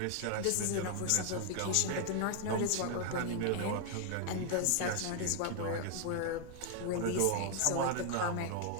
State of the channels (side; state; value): both; different; correlation 0.00